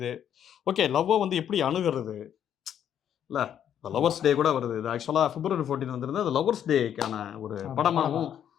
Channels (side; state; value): right; quieter; 9.5 dB